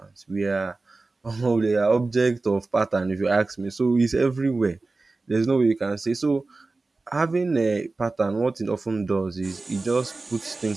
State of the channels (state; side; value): quieter; left; 3.5 dB